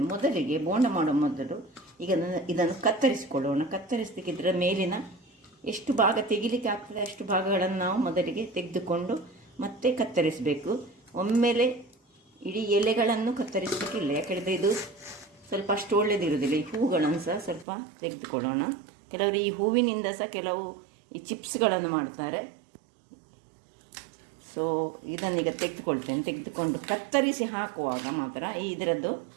ಮೊದಲಿಗೆ ಬೋಂಡ ಮಾಡುವ ಮೊದಲು ಈಗ ಇದನ್ನು ಕತ್ತರಿಸಿಕೊಳ್ಳೋಣ. ಕತ್ತರಿಸಲಿಕ್ಕೆ ಇದರ ಮೇಲಿನ ಎಷ್ಟು ಭಾಗ ತೆಗಿಲಿಕ್ಕೆ ಆಗ್ತದೆ ಅಷ್ಟು ಭಾಗಗಳನ್ನು ನಾವು ಮೊದಲಿಗೆ ತೆಗೆದುಕೊಂಡು ಮತ್ತೆ ಕತ್ತರಿಸಬೇಕು. ಒಮ್ಮೆಲೆ ಇಡೀ ಎಲೆಗಳನ್ನು ಕತ್ತರಿಸಲಿಕ್ಕಿಲ್ಲ, ಯಾಕಂದರೆ ಇದು ಸ್ವಲ್ಪ ಅಷ್ಟು ಒಳ್ಳೆಯದಿರುವುದಿಲ್ಲ. ಈ ಹೂಗಳನ್ನು ಸಹ ಸ್ವಲ್ಪ ತೆಗೆದುಕೊಳ್ಳೋಣ. ಕೆಲವರು ಈ ಹೂವಿನಿಂದ ಸಹ ಕೆಲವು ಈ ಚಿಪ್ಸ್ಗಳನ್ನು ಮಾಡ್ತಾರೆ. ಸೊ ಇದನ್ನೀಗ ತೆಗೆದುಕೊಳ್ತೇನೆ. ತೆಗೆದುಕೊಂಡು ಕತ್ತರಿಸಿ ಹಾಕುವಾಗ ಮಾತ್ರ ಇದರದ್ದು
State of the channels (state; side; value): drops out; left; at 17.7 s